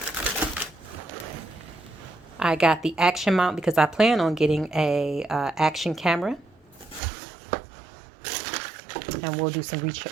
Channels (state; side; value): drops out; left; at 7.0 s